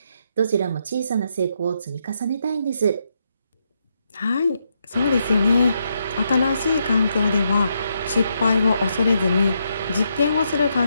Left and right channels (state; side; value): inverted; both; correlation -0.80